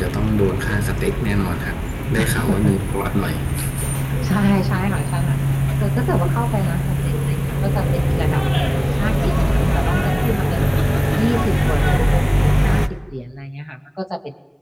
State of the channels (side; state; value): both; identical; correlation 1.00